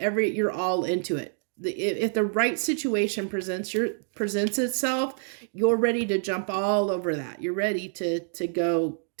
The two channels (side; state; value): left; silent; 58 dB below the other